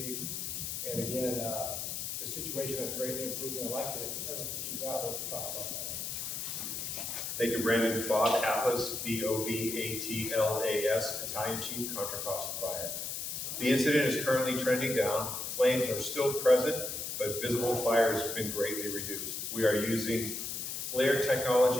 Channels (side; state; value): left; noise; hiss, 4 dB below the sound